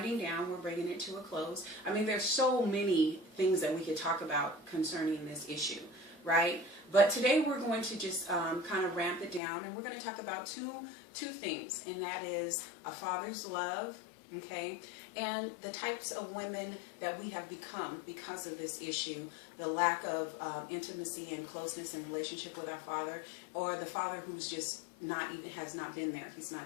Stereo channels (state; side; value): drops out; right; at 9.4 s